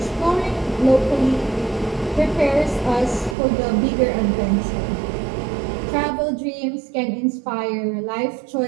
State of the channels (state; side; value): drops out; left; at 3.4 s